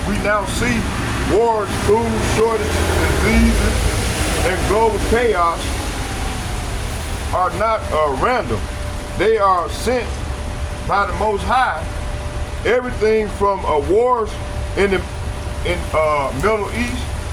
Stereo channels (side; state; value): both; identical; correlation 1.00